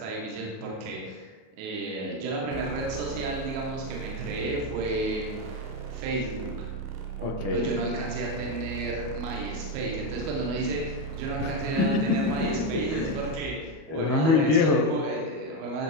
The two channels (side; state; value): left; late; 37 ms